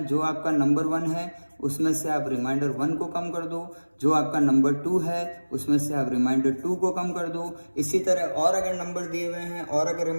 जो आपका नंबर 1 है उसमें से आप रिमाइंडर 1 को कम कर दो, जो आपका नंबर 2 है उसमें से आप रिमाइंडर 2 को कम कर दो। इसी तरह और अगर नंबर दिए हुए हैं और अगर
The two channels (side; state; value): both; inverted; correlation -1.00